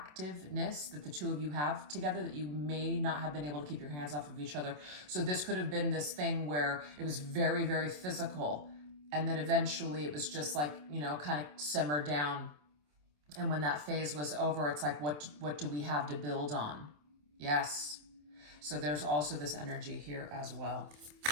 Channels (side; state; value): left; late; 27 ms